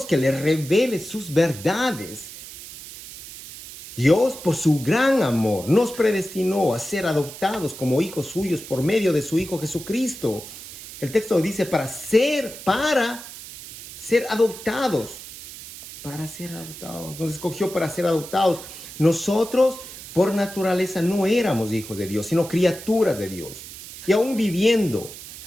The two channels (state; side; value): noise; right; hiss, 14 dB below the sound